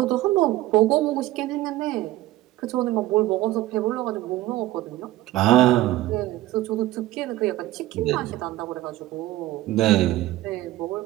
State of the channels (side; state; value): left; quieter; 16.2 dB